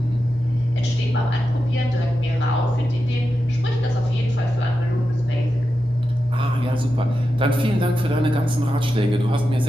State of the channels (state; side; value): normal; both; correlation 0.90